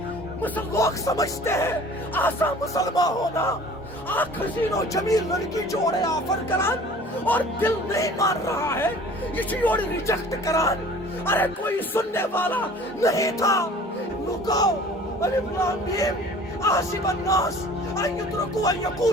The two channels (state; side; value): normal; both; correlation 0.47